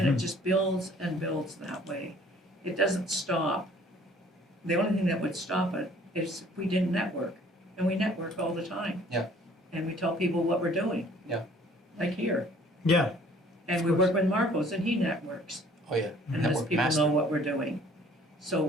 it just builds and builds that way. It doesn't stop. The only thing that would stop it is if we didn't network, and we network all the time. Yeah. And we tell people what we're doing. Yeah. Like here. Yeah. And we work with Marcos, and he networks. Oh yeah. And lets Network people master. know what we're doing.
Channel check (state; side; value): normal; both; correlation 0.55